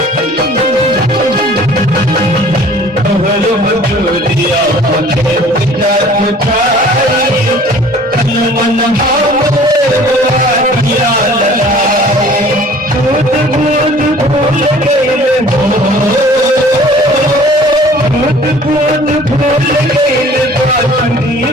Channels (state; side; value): normal; both; correlation 0.50